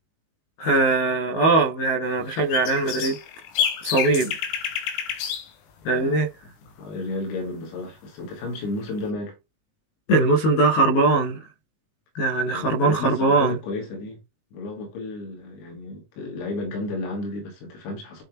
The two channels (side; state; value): right; late; 19 ms